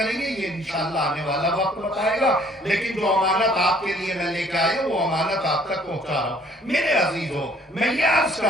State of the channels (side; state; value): both; normal; correlation 0.59